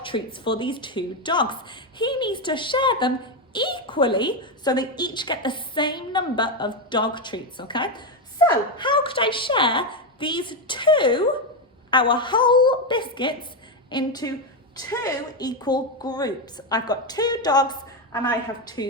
treats for these two dogs. He needs to share them equally so they each get the same number of dog treats, okay? So how could I share these two, our whole biscuits, into 2 equal groups? I've got 2 dogs and I have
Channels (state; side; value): normal; both; correlation 0.08